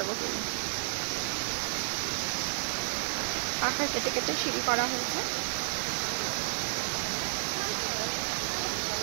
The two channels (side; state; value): left; silent; 57 dB below the other